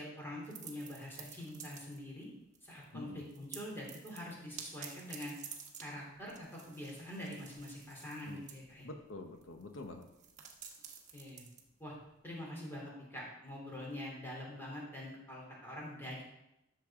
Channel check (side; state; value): both; normal; correlation 0.50